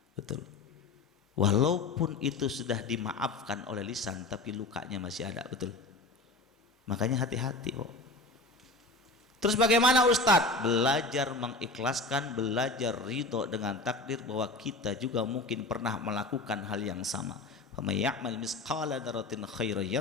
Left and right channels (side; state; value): right; quieter; 3.1 dB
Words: Betul. Walaupun itu sudah dimaafkan oleh lisan, tapi lukanya masih ada. Betul. Makanya hati-hati kok. Terus bagaimana Ustadz? Belajar mengikhlaskan, belajar ridho dengan takdir bahwa kita juga mungkin pernah melakukan hal yang sama. Faman ya'mal misqala dzarratin khairan